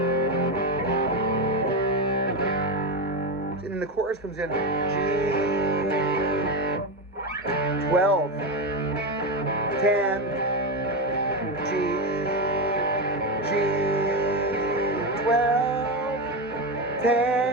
And then the chorus comes in G 12 10 G 12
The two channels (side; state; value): both; normal; correlation 0.13